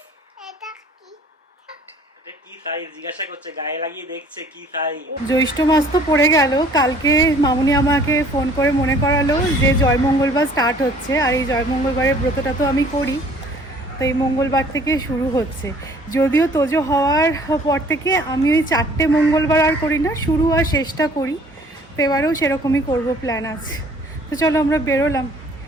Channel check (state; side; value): normal; both; correlation 0.55